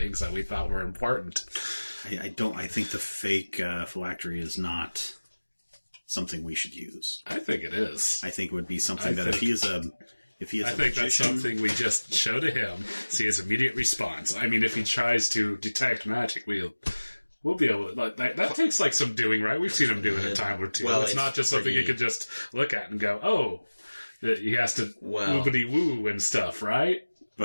that we thought were important. I think the fake phylactery is not something we should use. I think it is. I think it would be something if he is a magician, that's something we just show to him, see his immediate response. I mean, if he tries to detect magic, we'll be able to... That takes some doing, right? We've seen him do it a time or two. Well, it's not just something you could just look at and go, oh, he has to woobity-woo and stuff, right?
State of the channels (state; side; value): inverted; both; correlation -1.00